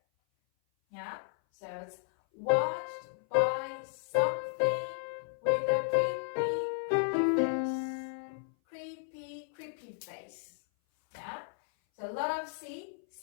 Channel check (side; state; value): right; silent; 55 dB below the other